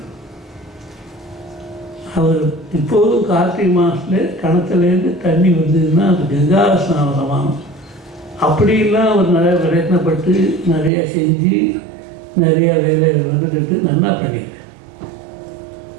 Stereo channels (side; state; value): left; drops out; at 10.9 s